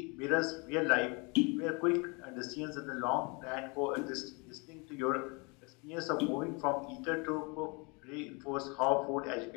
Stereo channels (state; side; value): quieter; right; 30.5 dB